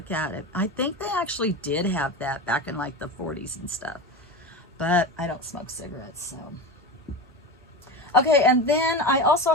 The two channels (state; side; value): normal; both; correlation 0.25